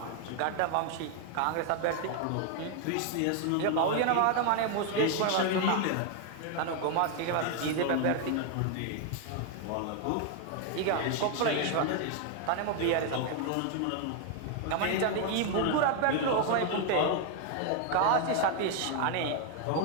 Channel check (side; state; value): both; different; correlation 0.00